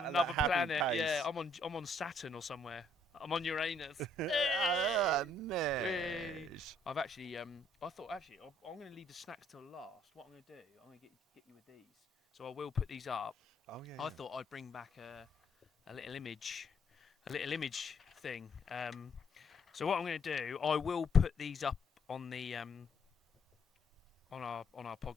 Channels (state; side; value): normal; both; correlation 0.68